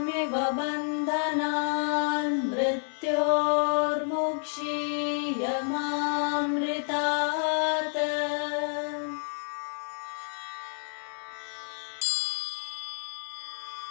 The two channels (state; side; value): silent; right; 58 dB below the other